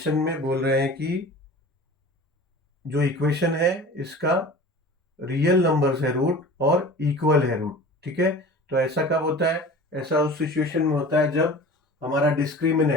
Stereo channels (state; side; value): normal; both; correlation 0.40